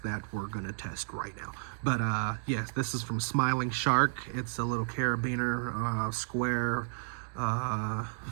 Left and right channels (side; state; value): left; silent; digital silence